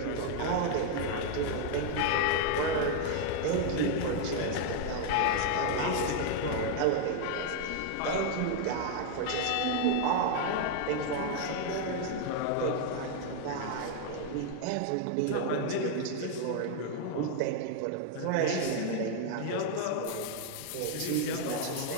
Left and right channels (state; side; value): different; both; correlation 0.00